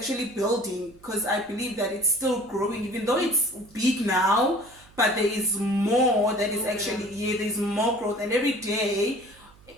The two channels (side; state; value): right; noise; hum, 26 dB below the sound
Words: building, because I believe that it's still growing, even though it's big now, but there is more that is actually, there's more growth. And every day,